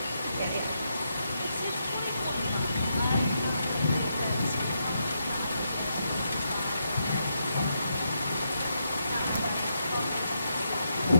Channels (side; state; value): both; inverted; correlation -0.81